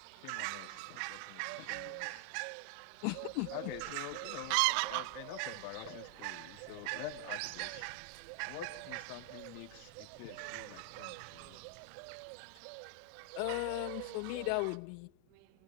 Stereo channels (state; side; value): different; both; correlation 0.00